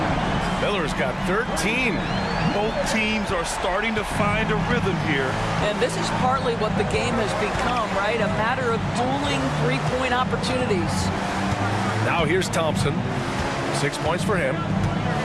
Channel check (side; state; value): both; identical; correlation 1.00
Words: Miller's got 13. Both teams are starting to find a rhythm here. And this is partly what the game has become, right? A matter of dueling three-point opportunities. Now here's Thompson. 6 points for him.